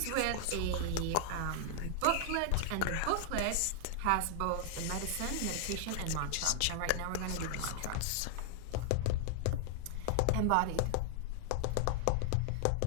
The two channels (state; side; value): different; both; correlation 0.00